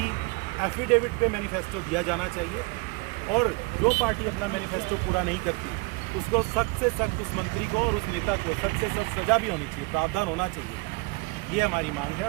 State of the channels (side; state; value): left; quieter; 26.9 dB